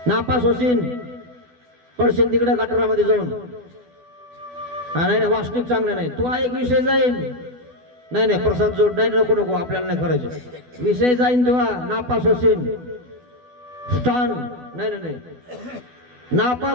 नापास होशील, पडशील तिकडे गटारामध्ये जाऊन. हा नाही नाही वासनिक चांगला नाही, तू हा एक विषय जाईल. नाही नाही प्रसाद जोड नाही, नको नको आपल्याला नाही करायचं, विषय जाईन तुला, नापास होशील. स्थान नाही नाही नाही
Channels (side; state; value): left; late; 12 ms